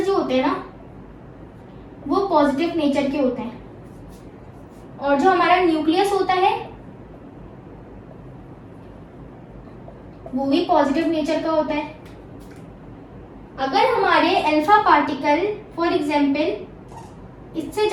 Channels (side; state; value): both; identical; correlation 1.00